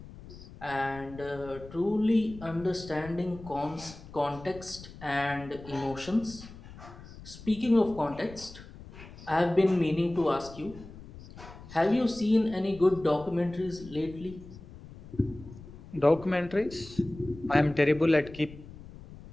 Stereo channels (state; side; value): noise; left; rumble, 17 dB below the sound